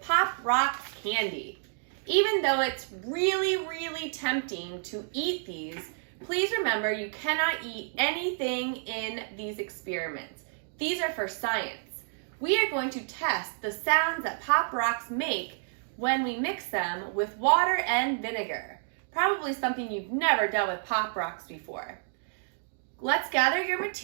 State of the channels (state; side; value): silent; left; digital silence